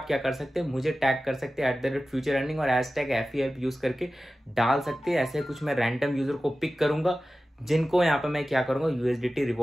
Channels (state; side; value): normal; both; correlation 0.95